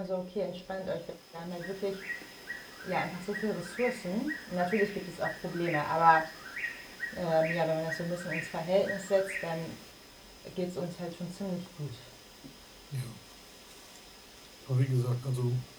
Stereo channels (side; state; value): both; identical; correlation 1.00